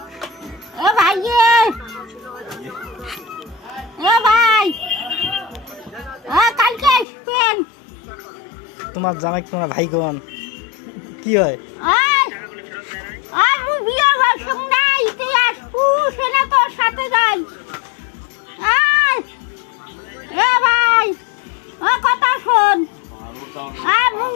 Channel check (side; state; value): right; drops out; at 7.1 s